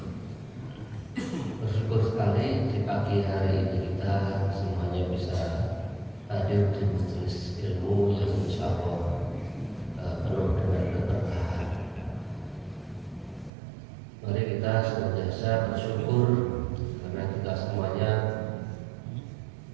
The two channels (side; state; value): left; drops out; at 13.5 s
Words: Bersyukur sekali di pagi hari ini kita semuanya bisa hadir di majelis ilmu yang insya Allah penuh dengan keberkahan. Mari kita senantiasa bersyukur karena kita semuanya